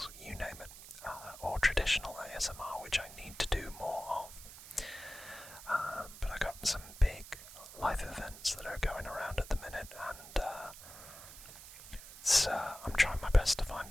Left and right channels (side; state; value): right; noise; hiss, 15 dB below the sound